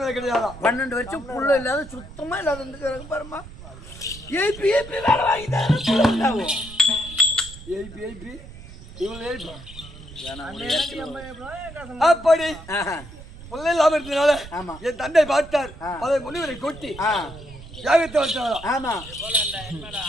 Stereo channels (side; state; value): right; noise; rumble, 16 dB below the sound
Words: கிடையாது. 12 வருஷம் புள்ள இல்லாத சுத்தமா இல்லாத பாருமா. ஏபி வேலை வாங்கிட்டாரு. ஏபி அப்படி பிள்ளை இல்லாம இருந்ததுனால என் தந்தை பார்த்தார். அதை முனிவரை கொட்டி யாகத்தை வச்சாரா? ஆமா.